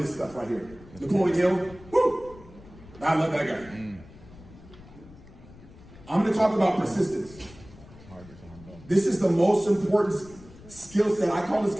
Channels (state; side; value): noise; left; rumble, 20 dB below the sound